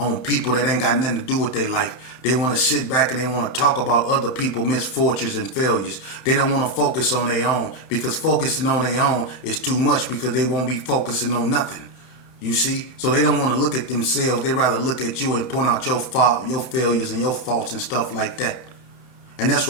people that ain't got nothing to do with their life. They want to sit back and they want to talk about other people's misfortunes and failures. They don't want to focus on their own, because focusing on their own is too much, because they won't be focusing on nothing. You see? So they don't want to look at themselves. They rather look at you and point out your fault, your failures and your faults and stuff like that. And that's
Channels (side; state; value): right; late; 30 ms